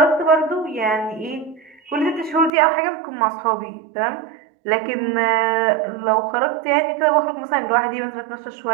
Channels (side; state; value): left; drops out; at 2.5 s